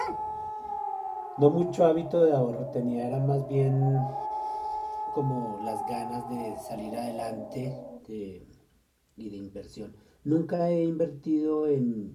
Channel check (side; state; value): both; identical; correlation 1.00